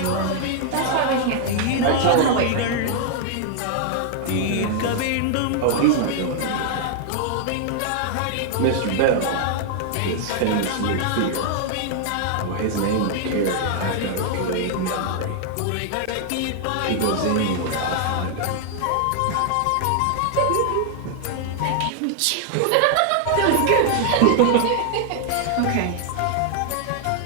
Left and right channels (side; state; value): both; different; correlation 0.00